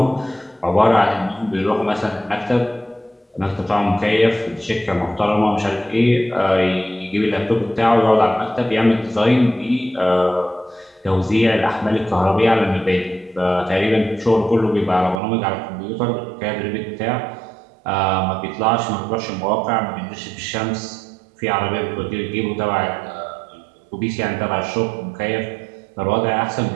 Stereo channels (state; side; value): drops out; left; at 15.2 s